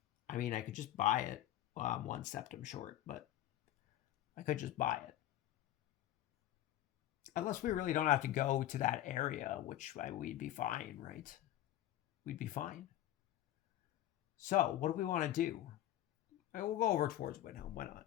I mean, I could just buy it. Well, I'm 1 septum short, but I could just buy it. Unless we really don't have to go to that area, which we'd be fine, right? We'd be fine. So, what do we want to do? We'll go over towards Windhelm. Why not?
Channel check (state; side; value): quieter; right; 13.0 dB